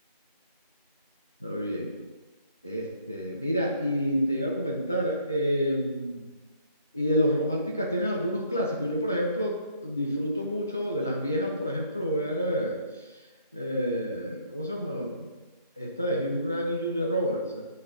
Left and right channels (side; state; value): both; inverted; correlation -0.63